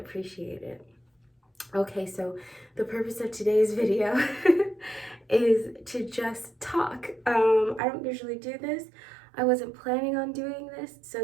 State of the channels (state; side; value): drops out; left; at 7.8 s